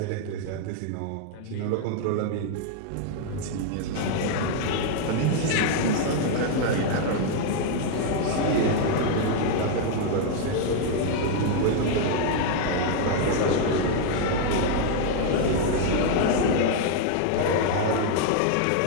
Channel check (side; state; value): both; different; correlation 0.00